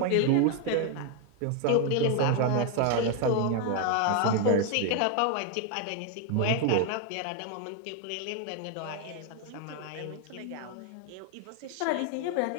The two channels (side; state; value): both; different; correlation 0.01